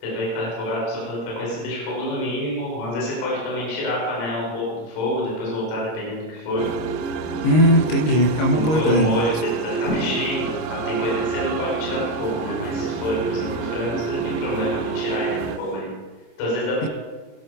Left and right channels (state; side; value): late; right; 26 ms